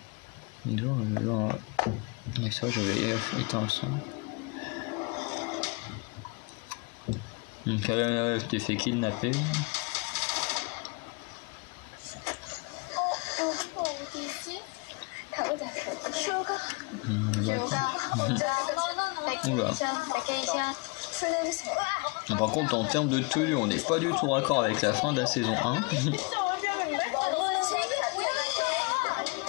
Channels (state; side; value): quieter; right; 28.3 dB